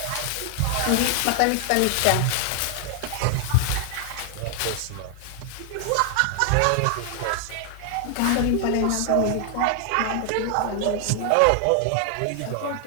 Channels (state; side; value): different; both; correlation 0.00